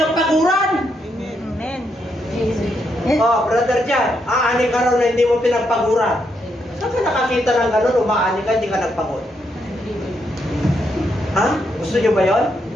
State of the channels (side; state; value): both; normal; correlation 0.79